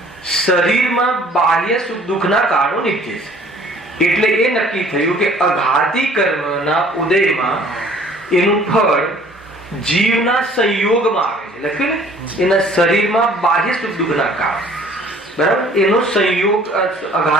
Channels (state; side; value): normal; both; correlation 0.54